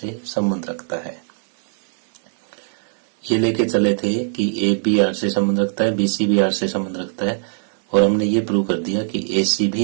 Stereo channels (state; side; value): silent; left; 66 dB below the other